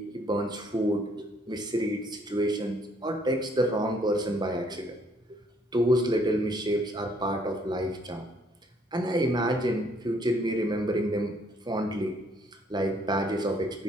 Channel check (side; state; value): both; normal; correlation 0.65